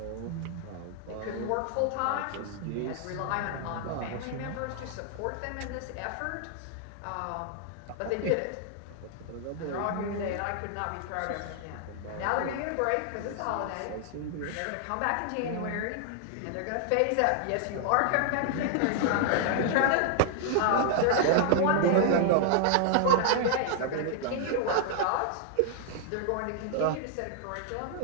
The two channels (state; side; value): different; both; correlation -0.01